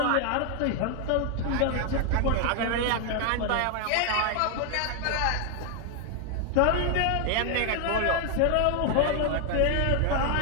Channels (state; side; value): different; both; correlation 0.00